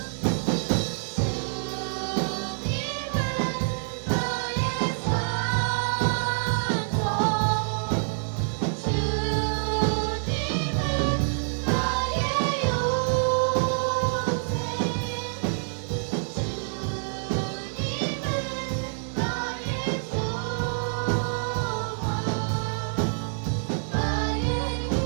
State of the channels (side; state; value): left; silent; 57 dB below the other